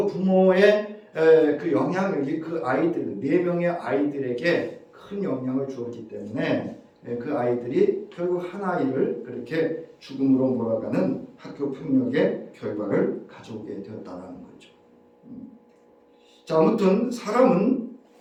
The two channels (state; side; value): identical; both; correlation 1.00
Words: 부모의 그 영향력이 그 아이들 4명의 아이들에게 큰 영향을 주었기 때문에 그 아이들이 결국 한 아이를 그렇게 죽음으로 몰아가는 학교 폭력의 결과를 가져오게 되었다는 거죠. 자, 아무튼 사람은